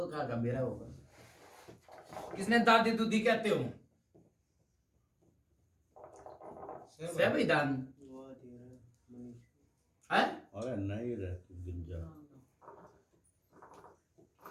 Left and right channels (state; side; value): identical; both; correlation 1.00